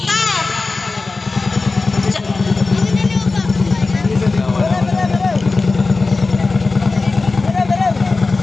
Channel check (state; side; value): quieter; right; 3.7 dB